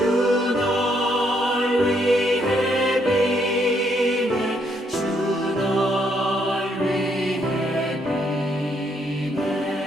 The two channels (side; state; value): both; normal; correlation 0.73